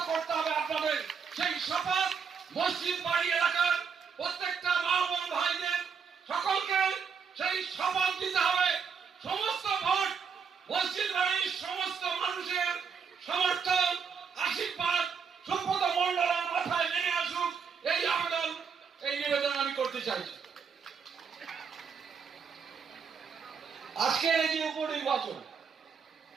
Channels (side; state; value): left; quieter; 6.2 dB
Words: করতে হবে আপনাদের। সেই শপথ মসজিদ বাড়ি এলাকার প্রত্যেকটা মা বোন ভাইদের সকলকে সেই শপথ দিতে হবে। সমস্ত ভোট মসজিদ বাড়ির সমস্ত মানুষের সমর্থন, আশীর্বাদ সুব্রত মণ্ডলের মাথায় নেমে আসুক, এই আবেদন, এই নিবেদন আমি করতে চাইছি। আজকের এই যে উপনির্বাচন,